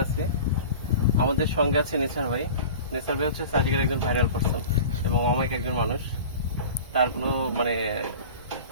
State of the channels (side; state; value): both; inverted; correlation -0.37